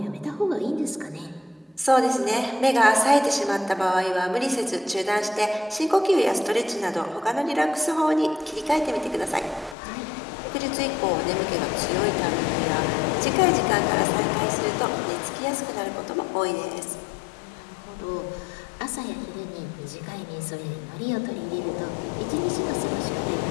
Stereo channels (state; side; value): drops out; right; at 9.8 s